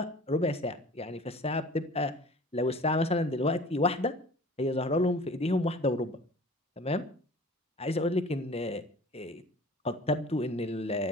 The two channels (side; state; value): both; normal; correlation 0.44